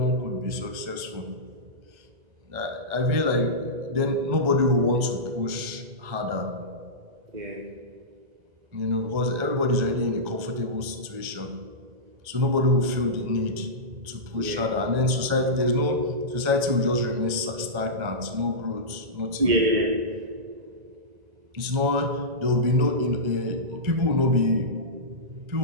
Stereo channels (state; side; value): late; left; 1.9 ms